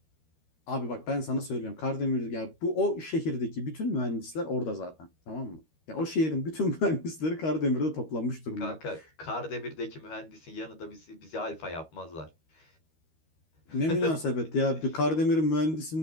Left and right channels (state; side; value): late; right; 13 ms